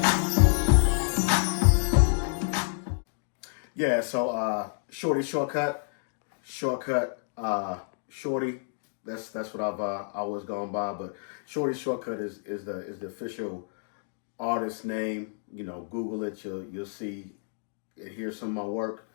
Yeah, so Shorty shortcut, Shorty. That's what I've always gone by. But Shorty shortcut is the official artist name. You know, Google it. You'll see and hear some of my work.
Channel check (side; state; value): right; silent; digital silence